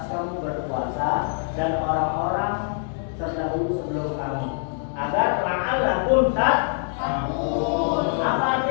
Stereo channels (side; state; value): right; silent; 62 dB below the other